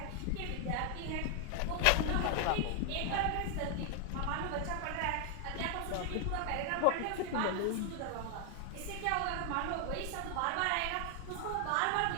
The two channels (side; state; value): both; different; correlation 0.00